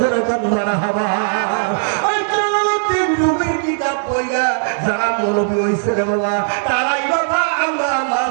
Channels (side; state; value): left; silent; digital silence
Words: মারহাবা ওই জালালউদ্দিন রুমির কিতাব পড়া যারা মৌলবী হইছে রে বাবা তারাই বাবা আমরা